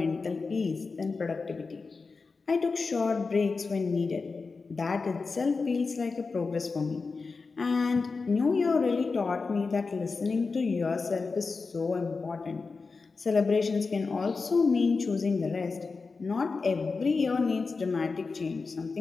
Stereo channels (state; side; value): quieter; right; 4.4 dB